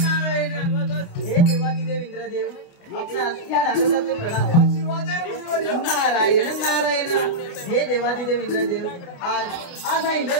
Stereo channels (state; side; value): late; right; 29 ms